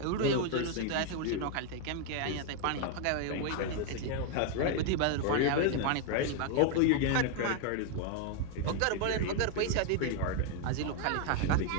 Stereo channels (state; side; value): different; both; correlation 0.01